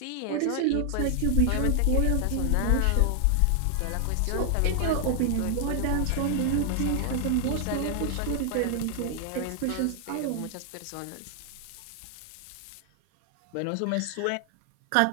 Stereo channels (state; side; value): different; both; correlation 0.00